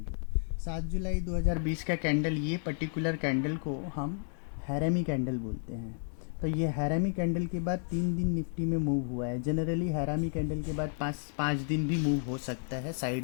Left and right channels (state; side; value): silent; right; 56 dB below the other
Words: 7 जुलाई 2020 का कैंडल, ये पर्टिकुलर कैंडल को हम हैरामी कैंडल बोलते हैं। तो ये हैरामी कैंडल के बाद 3 दिन निफ्टी में मूव हुआ है। जनरली हैरामी कैंडल के बाद पाँच दिन भी मूव हो सकता है